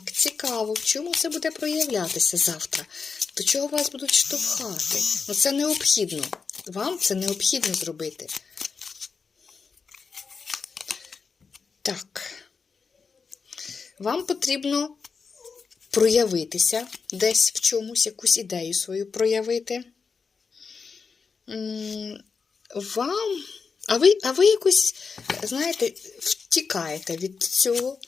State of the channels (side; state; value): right; quieter; 5.2 dB